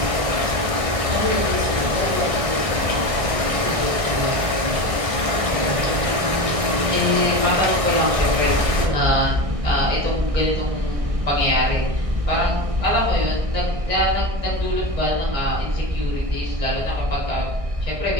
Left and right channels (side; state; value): left; late; 1.6 ms